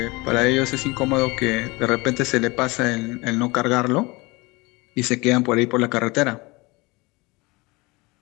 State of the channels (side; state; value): right; quieter; 24.2 dB